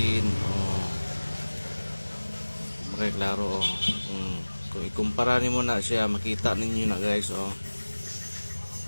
Okay, klaro. Kung ikumpara nimo na siya, makita ninyo na guys.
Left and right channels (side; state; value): both; inverted; correlation -1.00